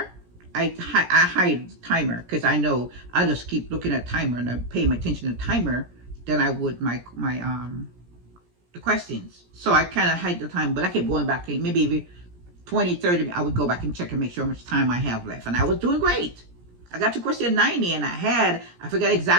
I hide the timer, because I know I just keep looking at timer and I'm paying attention to the timer than I would the questions. So I kind of hide the time, but I kept going back, maybe every 20, 30, I would go back and check and make sure how much time I have left. And I was doing great. I got to question 90, and I forgot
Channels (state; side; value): late; left; 17 ms